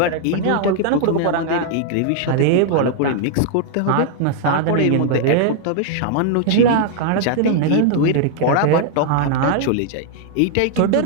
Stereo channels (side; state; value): both; different; correlation 0.00